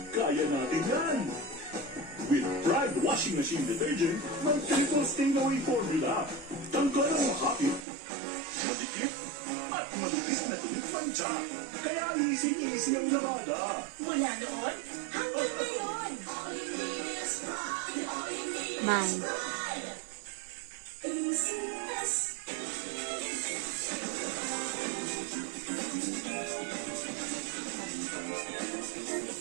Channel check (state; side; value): drops out; left; at 7.9 s